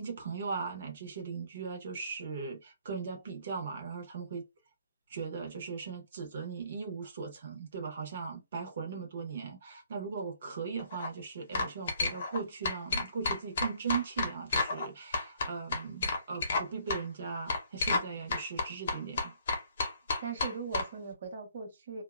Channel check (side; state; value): both; inverted; correlation -0.63